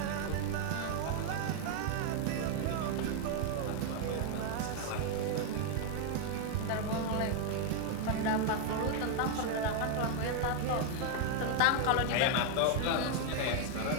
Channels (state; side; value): different; both; correlation 0.00